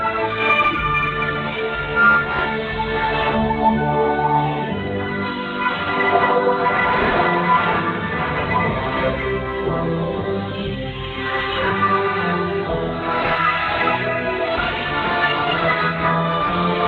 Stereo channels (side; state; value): both; identical; correlation 1.00